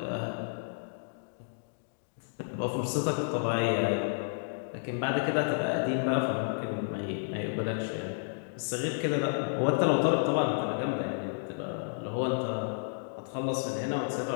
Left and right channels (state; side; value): silent; right; digital silence